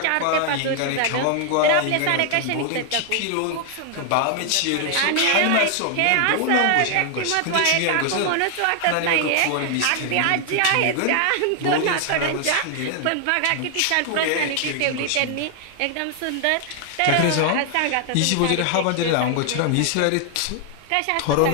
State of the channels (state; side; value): different; both; correlation 0.00